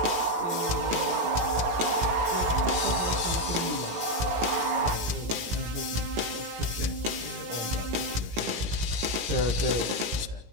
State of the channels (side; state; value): left; late; 17 ms